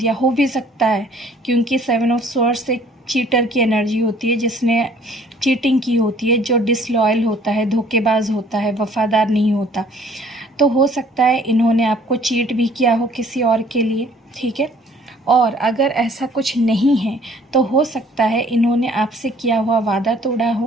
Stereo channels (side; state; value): both; normal; correlation 0.57